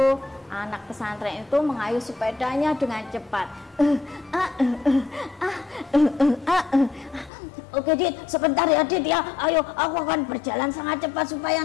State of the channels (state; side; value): drops out; right; at 7.3 s